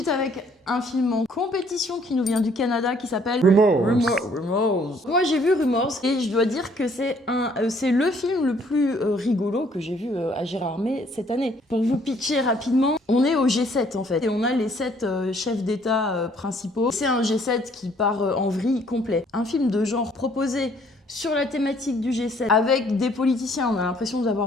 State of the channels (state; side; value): normal; both; correlation 0.62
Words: avec un film en compétition qui nous vient du Canada qui s'appelle Rumors. Moi j'ai vu Rumors et je dois dire que c'est le film le plus rigolo que j'ai vu à Gérardmer cette année. Pour vous pitcher rapidement, on est au G7 en fait et on a les 7 chefs d'État principaux. C'est un G7 qui part en vrille complet. Un film de genre proposé sur la thématique du G7, avec des politiciens. On a l'impression d'avoir